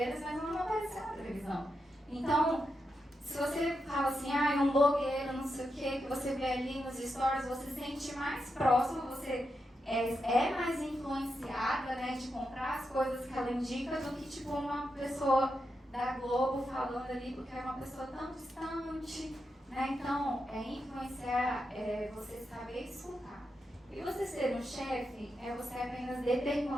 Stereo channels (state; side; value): normal; both; correlation 0.86